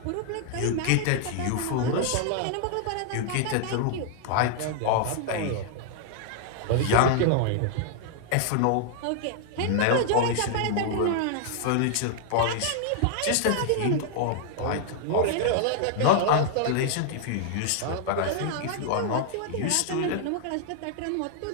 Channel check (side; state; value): both; different; correlation 0.00